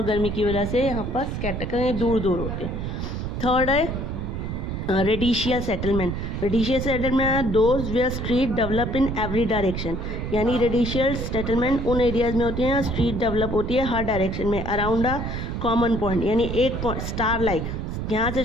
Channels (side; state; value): right; noise; rumble, 4 dB below the sound